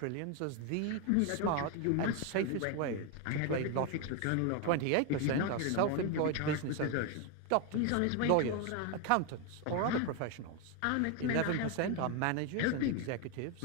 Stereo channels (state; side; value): different; both; correlation 0.01